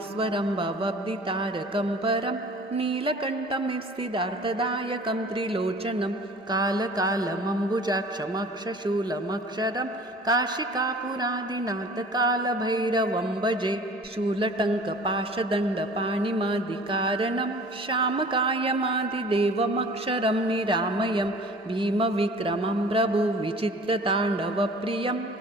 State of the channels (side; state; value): both; normal; correlation 0.46